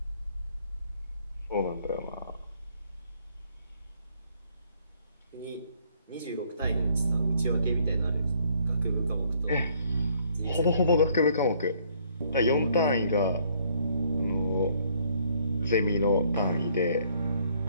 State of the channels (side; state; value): both; inverted; correlation -0.64